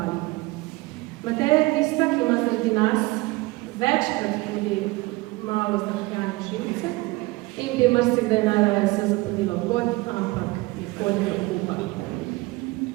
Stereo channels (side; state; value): left; quieter; 22.4 dB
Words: Mateja je tista, ki ima zaradi nas večkrat tudi malo zdahljane živce in bi marsikdaj najraje se zapodila v god, ampak je podnega kupa.